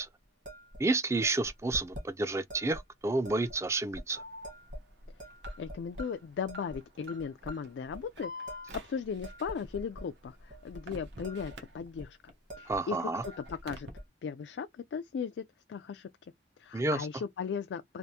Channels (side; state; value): both; normal; correlation 0.32